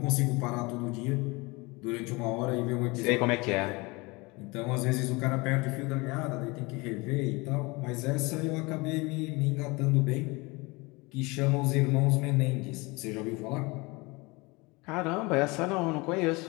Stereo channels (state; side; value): quieter; right; 25.3 dB